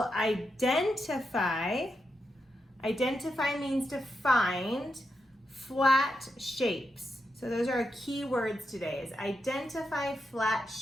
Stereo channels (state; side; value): normal; both; correlation 0.86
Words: identify means to find, flat shapes. So those are our key words today, is identify flat